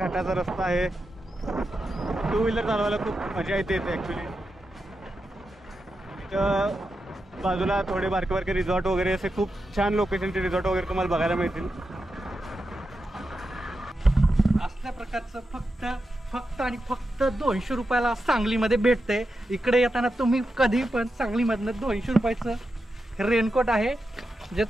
रस्ता आहे. 2 व्हीलर चालवायला खूप मजा येते ॲक्च्युली. इथं बाजूला थोडे बारके बारके रिसॉर्ट वगैरे असे खूप छान लोकेशनचे रिसॉर्ट वगैरे तुम्हाला बघायला मिळतील. असल्या प्रकारचं फक्त आणि फक्त 200 रुपयाला सांगलीमध्ये भेटते. इकडे येताना तुम्ही कधी पण सांगलीमधनं 200 रुपयाचं रेनकोट आहे जे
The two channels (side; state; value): both; normal; correlation 0.88